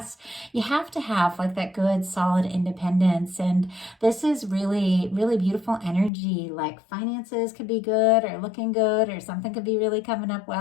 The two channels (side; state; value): right; drops out; at 6.1 s